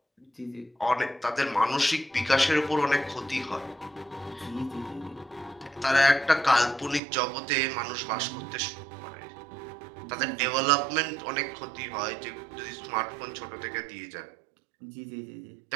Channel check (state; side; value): drops out; left; at 7.0 s